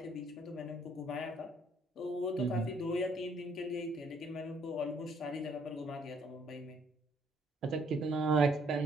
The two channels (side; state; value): both; normal; correlation 0.66